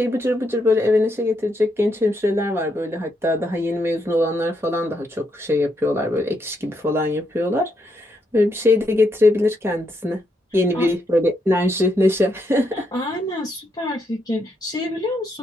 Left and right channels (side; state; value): both; normal; correlation 0.79